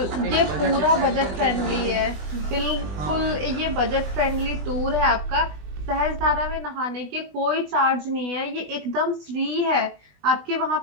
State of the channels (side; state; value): left; late; 20 ms